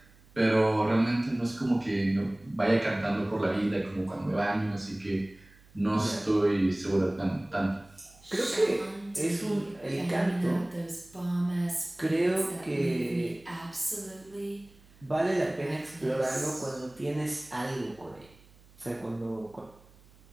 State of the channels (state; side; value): noise; right; hum, 26 dB below the sound